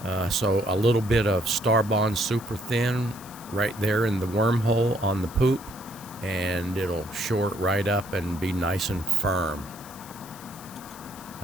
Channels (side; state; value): left; noise; hiss, 18 dB below the sound